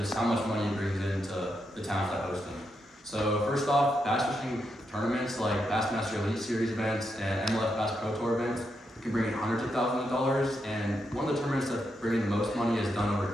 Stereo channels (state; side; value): normal; both; correlation 0.83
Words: how much money it brings into the towns that host them. So first off, bass fishing tournaments like Bassmaster Elite Series events and MLF Bass Pro Tour events can bring in hundreds of thousands of dollars, and one of the tournaments that's bringing the most money has done over